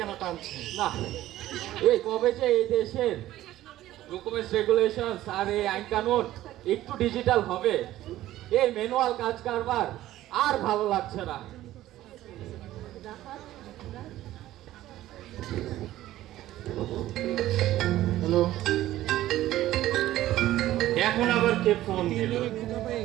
টানছে? না, এই কবে যে এই দেশের ডকুমেন্টস রেগুলেশন আর এই আইন কানুন একটু ডিজিটাল হবে, এই ম্যানুয়াল কাজ কারবার আর ভালো লাগছে না। হ্যালো, এখন আবার কে ফোন দিল?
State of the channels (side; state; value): left; quieter; 14.6 dB